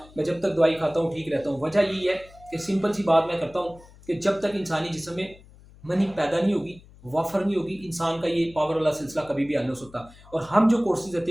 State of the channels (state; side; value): noise; left; hum, 23 dB below the sound